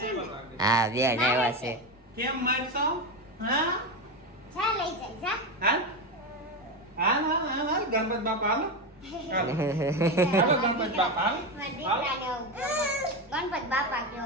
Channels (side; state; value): both; normal; correlation 0.16